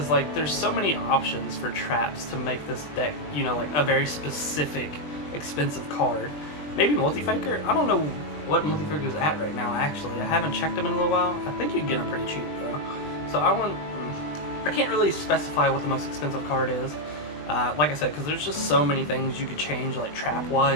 like there's so many options for traps to make this deck, you know, like a very specific expensive card. Maybe Multi-Faker. I don't know what Multi-Faker is at right now, actually. I haven't checked them in a little while. I think you can get them pretty cheap though. So I can't really specify what the most expensive card is. Like I said, because there's just so many things you could change, like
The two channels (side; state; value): right; late; 20 ms